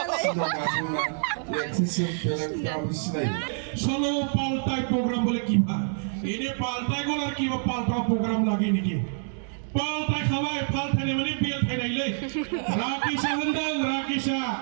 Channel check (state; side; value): silent; left; digital silence